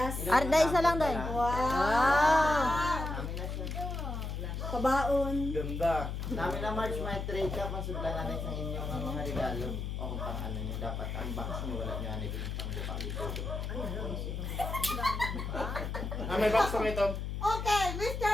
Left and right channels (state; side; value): noise; left; hum, 4 dB below the sound